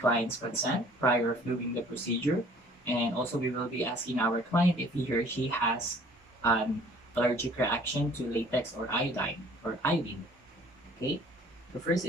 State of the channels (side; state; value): both; normal; correlation 0.53